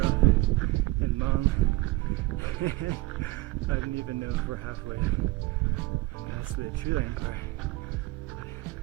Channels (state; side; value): quieter; left; 20.9 dB